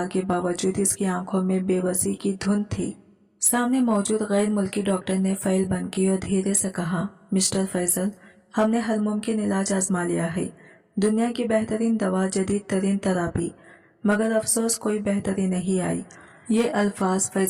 کے باوجود اس کی آنکھوں میں بے بسی کی دھند تھی۔ سامنے موجود غیر ملکی ڈاکٹر نے فائل بند کی اور دھیرے سے کہا، مسٹر فیصل، ہم نے ہر ممکن علاج آزما لیا ہے، دنیا کی بہترین دوا، جدید ترین تراپی، مگر افسوس کوئی بہتری نہیں آئی۔ یہ الفاظ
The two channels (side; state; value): both; identical; correlation 1.00